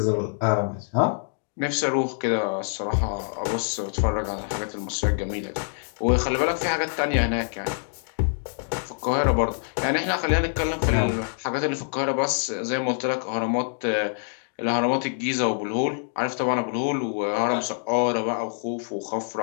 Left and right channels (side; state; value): right; silent; digital silence